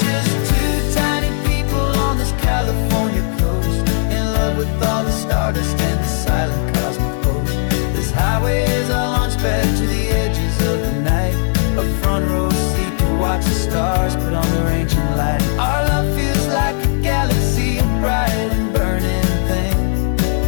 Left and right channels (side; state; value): right; silent; 65 dB below the other